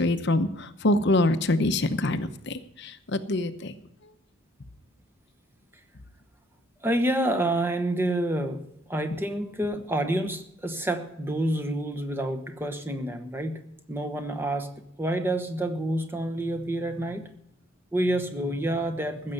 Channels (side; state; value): both; normal; correlation 0.65